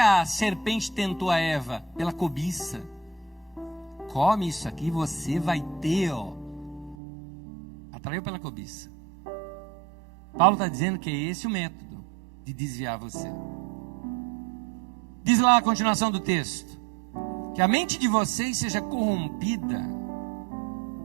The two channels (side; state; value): left; drops out; at 7.0 s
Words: serpente tentou a Eva? Pela cobiça. Come isso aqui, você vai ter, ó. Atraiu pela cobiça. Paulo está dizendo que é esse o método de desviar você. Diz lá a continuação do texto: que a mente de vocês seja corrompida.